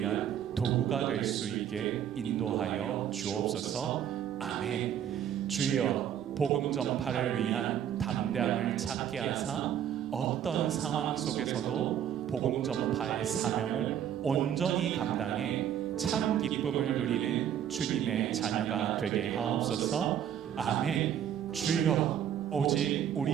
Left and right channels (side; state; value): left; quieter; 9.8 dB